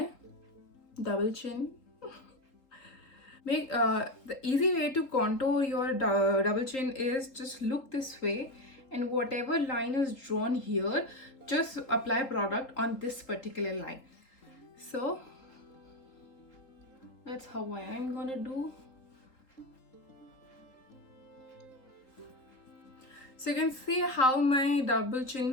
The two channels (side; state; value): right; late; 3.8 ms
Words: double chin. The easy way to contour your double chin is just look this way, and whatever line is drawn here, just apply product on this particular line. So that's how I'm gonna do. So you can see how my double